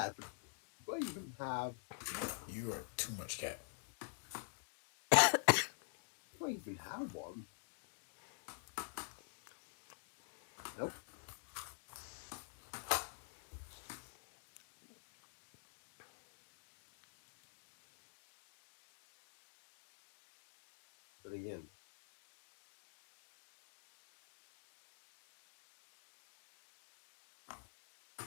but do I even have? You are too much cat. Do I even have one? Nope. But again,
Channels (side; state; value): right; silent; digital silence